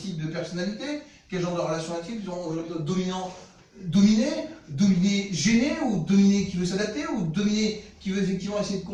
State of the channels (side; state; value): both; identical; correlation 1.00